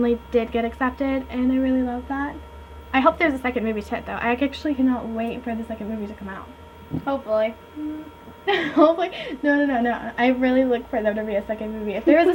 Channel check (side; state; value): both; identical; correlation 1.00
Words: did get accepted, and I really love that. I hope there's a second movie to it, though. I actually cannot wait for the second movie to come out. Hopefully. Hopefully. No. I really look for there to be a second movie. If there is